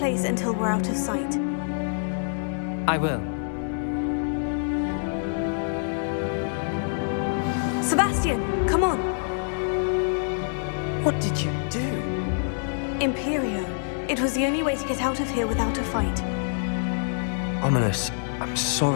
until we're out of sight. I will. Sebastian, come on! What did you do? Imperio. It was the only way to get out of here without a fight. Ominous, I'm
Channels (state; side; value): silent; right; digital silence